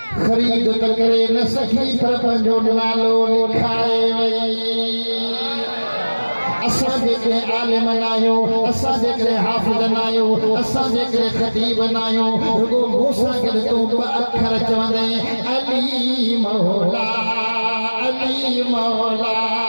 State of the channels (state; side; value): inverted; both; correlation -1.00